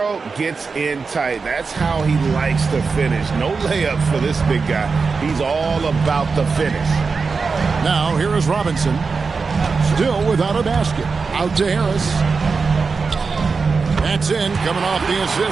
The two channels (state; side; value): quieter; left; 4.8 dB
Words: gets in tight, that's how he likes to finish. No layup for this big guy. He's all about the finish. Now here is Robinson. Still without a basket. Out to Harris. That's in, coming off the